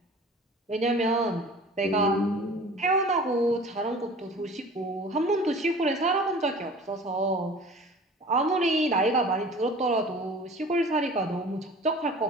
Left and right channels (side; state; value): both; normal; correlation 0.43